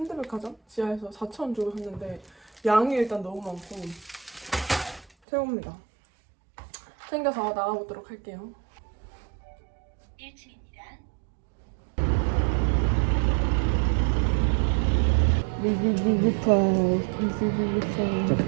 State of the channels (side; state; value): left; drops out; at 5.1 s